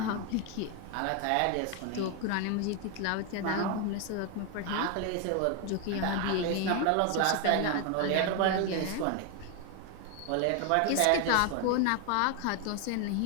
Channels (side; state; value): both; different; correlation 0.01